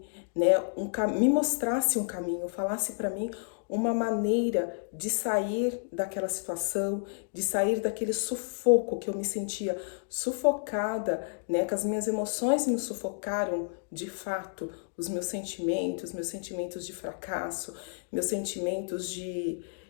né, me mostrasse um caminho, falasse para mim uma maneira de sair daquela situação, de sair daquele sufoco que eu me sentia sufocada, né, que as minhas emoções me sufocaram de fato, os meus sentimentos de fracasso, meus sentimentos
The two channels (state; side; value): silent; right; digital silence